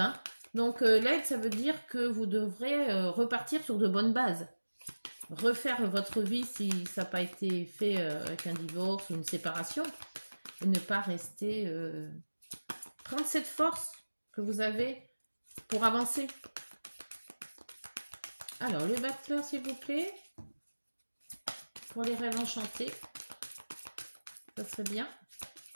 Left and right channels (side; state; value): both; inverted; correlation -1.00